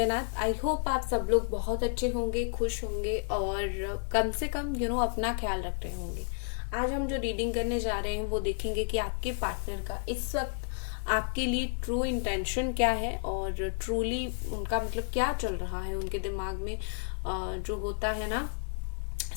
I hope आप सब लोग बहुत अच्छे होंगे, खुश होंगे और कम से कम अपना ख्याल रख रहे होंगे। आज हम जो रीडिंग करने जा रहे हैं वो देखेंगे कि आपके पार्टनर का इस वक्त आपके लिए ट्रू इंटेंशन क्या है और ट्रूली उनका मतलब क्या चल रहा है उनके दिमाग में। जो होता है ना,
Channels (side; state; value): right; silent; digital silence